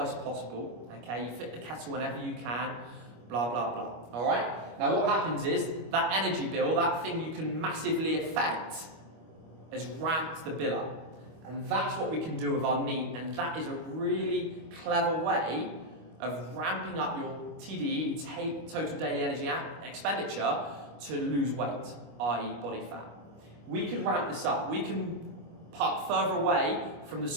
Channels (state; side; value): late; left; 25 ms